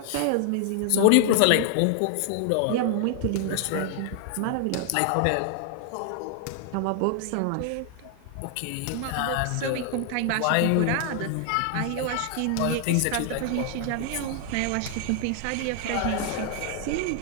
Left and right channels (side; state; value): both; different; correlation 0.00